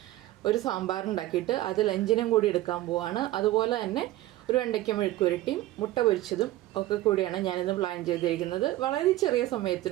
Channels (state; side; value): quieter; left; 16.0 dB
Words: ഒരു സാമ്പാർ ഉണ്ടാക്കിയിട്ട് അത് ലഞ്ചിനും കൂടി എടുക്കാൻ പോവാണ്. അതുപോലെ തന്നെ ഒരു വെണ്ടയ്ക്ക മെഴുക്കുരട്ടിയും മുട്ട പൊരിച്ചതും ഒക്കെ കൂടിയാണ് ഞാനിന്ന് പ്ലാൻ ചെയ്തിരിക്കുന്നത്. വളരെ ചെറിയ